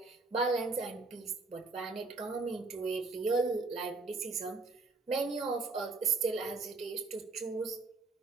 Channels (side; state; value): left; quieter; 3.8 dB